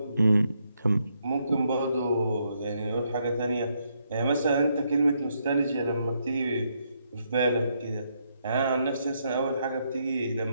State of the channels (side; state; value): both; inverted; correlation -0.77